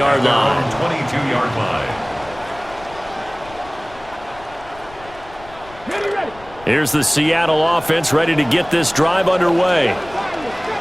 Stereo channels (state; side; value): noise; left; rumble, 21 dB below the sound